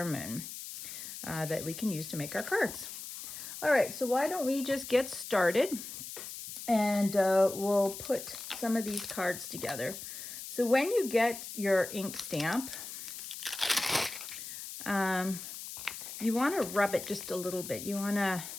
that we can use to make our cards. All right, so why don't we just get started, and we'll put some of these cards together. So when you get your ink stamp, you want to rub it just a little bit. You want to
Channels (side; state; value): left; noise; hiss, 9 dB below the sound